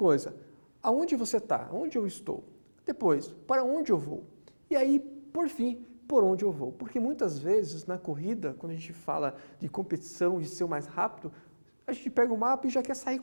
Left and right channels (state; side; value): inverted; both; correlation -1.00